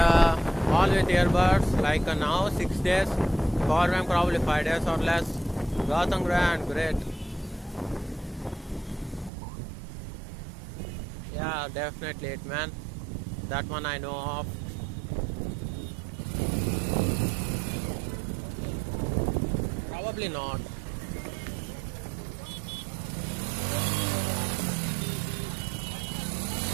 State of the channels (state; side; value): drops out; left; at 9.3 s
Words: all with earbuds. Like now 6 days, power bank probably 5 days or less. Gotham Grand, great. Yeah, definitely it, man. That one I know of. Probably not.